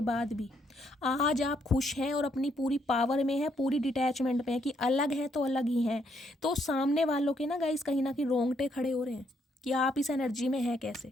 बाद भी आज आप खुश हैं और अपनी पूरी पावर में है, पूरी डिटैचमेंट में है कि अलग हैं तो अलग ही हैं, तो सामने वालों के ना गाइस कहीं ना कहीं रोंगटे खड़े हो रहे हैं कि आप इस एनर्जी में हैं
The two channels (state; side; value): normal; both; correlation 0.73